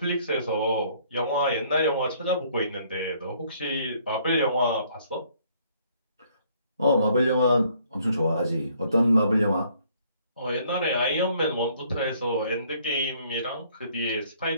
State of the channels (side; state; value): both; inverted; correlation -0.63